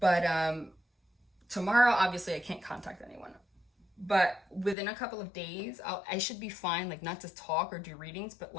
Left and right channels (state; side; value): drops out; right; at 4.8 s